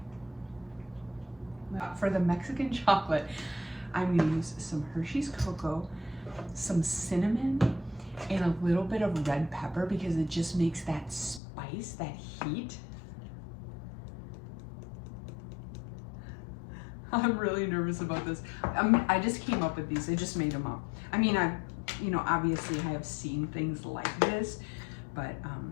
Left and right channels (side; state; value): right; drops out; at 11.4 s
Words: For the Mexican chocolate, I'm gonna use some Hershey's cocoa, some cinnamon, and a little bit of red pepper because it just makes that spice, that heat. I'm really nervous about this. I just came up with these. I just made them up. I mean, obviously I have seen things like this, but